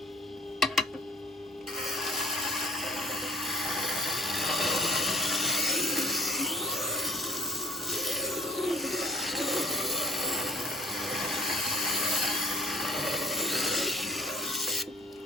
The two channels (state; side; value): normal; both; correlation 0.54